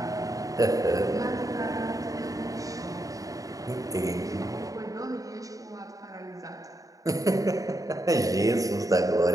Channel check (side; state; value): left; late; 0.17 ms